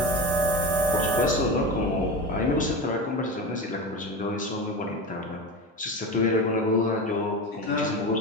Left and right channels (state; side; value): normal; both; correlation 0.24